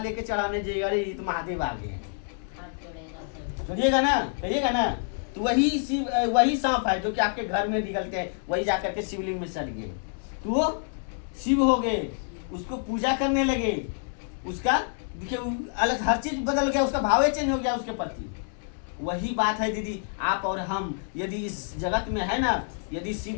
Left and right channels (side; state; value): right; silent; 60 dB below the other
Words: चढ़ाने जाइएगा, अरे ये तो महादेव आ गए हैं, कहिएगा ना? कहिएगा ना? तो वही सांप है जो कि आपके घर में निकलते हैं, वही जाकर के शिवलिंग में सट गए तो वो शिव हो गए, उसको पूजा करने लगे। उसका देखिए अलग हर चीज बदल गया, उसका भाव चेंज हो गया उसके प्रति। वही बात है दीदी, आप और हम यदि इस जगत में है ना, यदि शिव